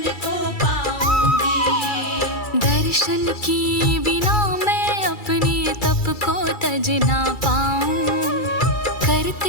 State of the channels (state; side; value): late; right; 2.3 ms